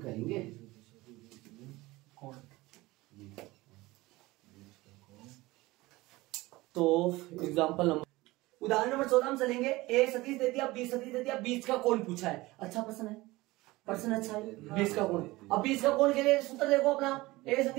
तो एग्जांपल नंबर उदाहरण नंबर 14 में चलेंगे। ए सदिश दे दिया, बी सदिश दे दिया, बीच का कोण पूछा है। अच्छा प्रश्न है, प्रश्न अच्छा है, बीच का कोण। अब बीच का कोण के लिए सूत्र देखो अपना, ए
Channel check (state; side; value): quieter; left; 20.1 dB